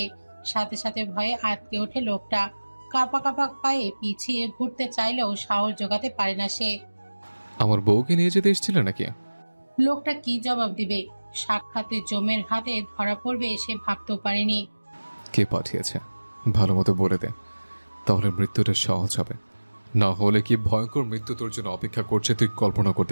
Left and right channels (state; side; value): inverted; both; correlation -1.00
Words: সাথে সাথে ভয়ে আটকে ওঠে লোকটা। কাঁপা কাঁপা পায়ে পিছিয়ে ঘুরতে চাইলেও সাহস জোগাতে পারে না সে। আমার বউকে নিয়ে যেতে এসেছিল নাকি? লোকটা কি জবাব দিবে? সাক্ষাতে জমের হাতে ধরা পড়বে সে ভাবতেও পারেনি। কে পাঠিয়েছে ভালো মতো বলে দে, তাহলে মৃত্যুটা সহজ হবে। না হলে কি ভয়ঙ্কর মৃত্যু তোর জন্য অপেক্ষা করছে তুই কল্পনা